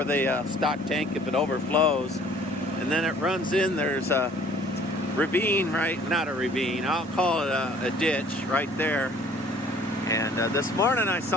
the stock tank if it overflows. And then it runs in, there's a ravine, right? Not a ravine, I'll call it a ditch right there. And this morning I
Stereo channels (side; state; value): right; noise; rumble, 28 dB below the sound